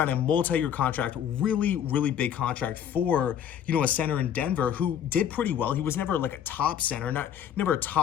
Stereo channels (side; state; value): right; quieter; 9.3 dB